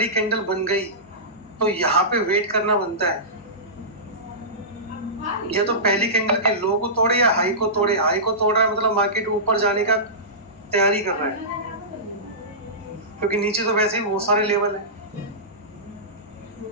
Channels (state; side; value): normal; both; correlation -0.19